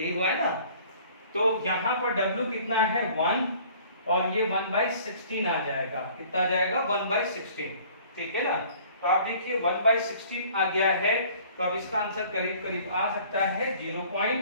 हुआ है ना। तो यहाँ पर W कितना है 1 और ये 1/16 आ जाएगा। कितना आ जाएगा 1/16, ठीक है ना। तो आप देखिए 1/16 आ गया है, तो अब इसका आंसर करीब करीब आ सकता है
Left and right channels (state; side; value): inverted; both; correlation -0.53